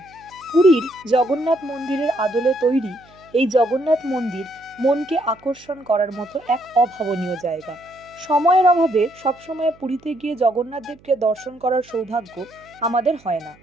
পুরীর জগন্নাথ মন্দিরের আদলে তৈরি এই জগন্নাথ মন্দির মনকে আকর্ষণ করার মতো এক অভাবনীয় জায়গা। সময়ের অভাবে সবসময় পুরীতে গিয়ে জগন্নাথ দেবকে দর্শন করার সৌভাগ্য আমাদের হয় না।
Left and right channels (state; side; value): noise; right; hum, 28 dB below the sound